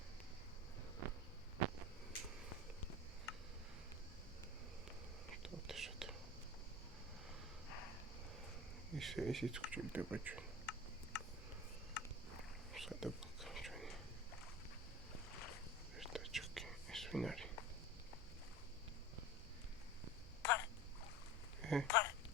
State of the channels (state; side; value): normal; both; correlation 0.33